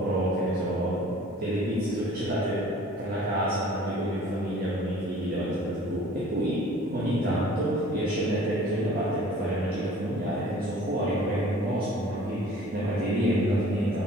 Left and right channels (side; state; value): both; normal; correlation 0.49